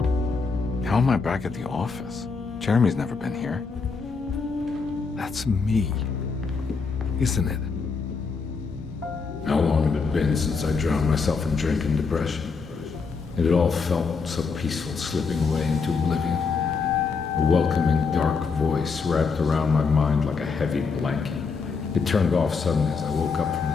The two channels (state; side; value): quieter; right; 4.9 dB